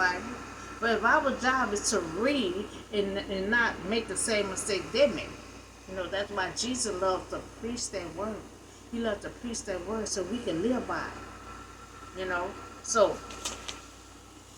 but if our job is to read and not make the same mistake they made, that's why Jesus loved to preach that word. He loved to preach that word so we can live by it. So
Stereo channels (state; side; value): identical; both; correlation 1.00